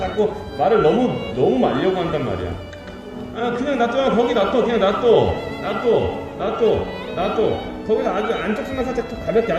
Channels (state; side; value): identical; both; correlation 1.00